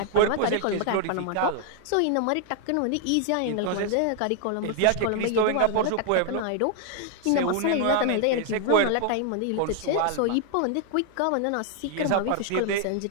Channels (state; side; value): different; both; correlation 0.00